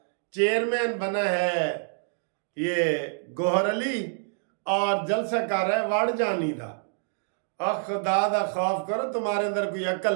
चेयरमैन बना है ये गोहर अली और जलसा कर रहा है वाड़ जानी का। खुदा दा खौफ करो, तुम्हारे अंदर कोई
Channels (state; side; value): silent; left; digital silence